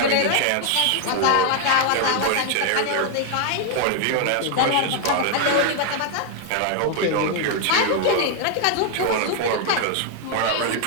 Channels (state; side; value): different; both; correlation 0.01